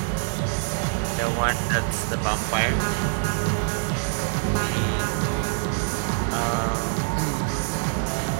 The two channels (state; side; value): silent; left; 58 dB below the other